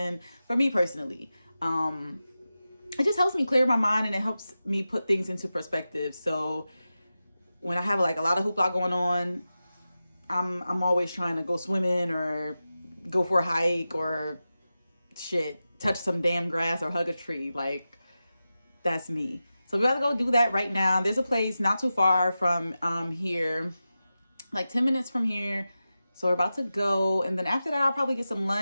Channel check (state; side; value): inverted; both; correlation -0.93